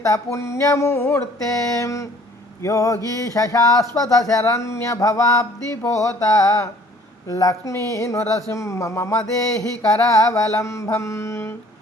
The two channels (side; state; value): both; normal; correlation 0.55